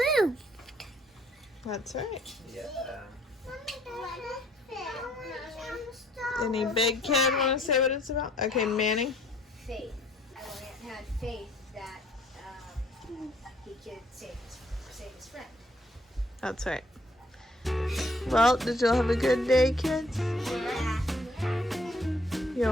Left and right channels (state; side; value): normal; both; correlation 0.62